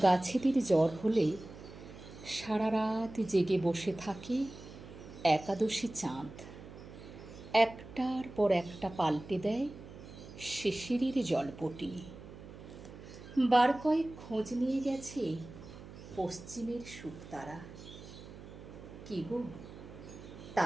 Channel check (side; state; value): right; noise; hum, 15 dB below the sound